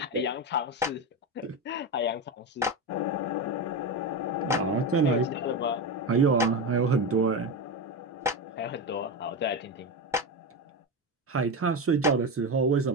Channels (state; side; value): normal; both; correlation 0.17